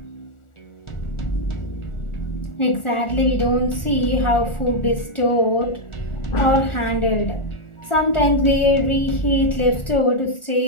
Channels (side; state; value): right; late; 1.4 ms